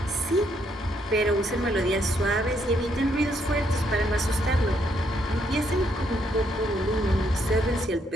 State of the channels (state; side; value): normal; both; correlation 0.73